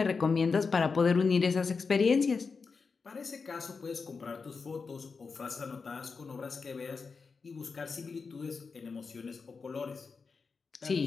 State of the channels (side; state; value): right; quieter; 4.9 dB